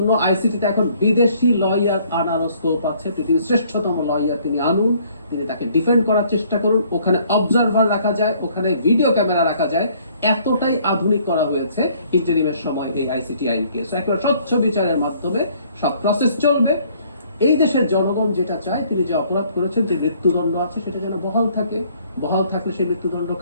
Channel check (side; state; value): both; inverted; correlation -0.61